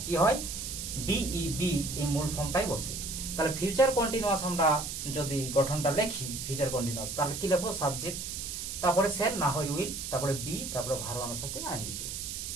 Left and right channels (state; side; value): noise; right; hiss, 6 dB below the sound